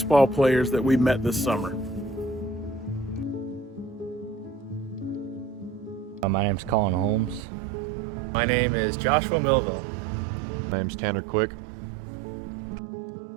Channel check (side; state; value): left; drops out; at 7.4 s